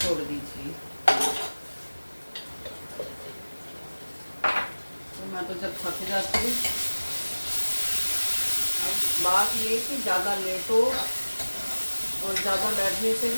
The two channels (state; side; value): inverted; both; correlation -1.00